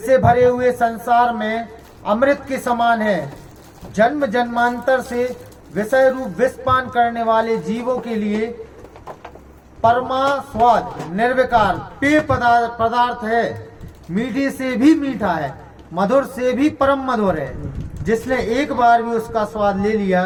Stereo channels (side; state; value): both; identical; correlation 1.00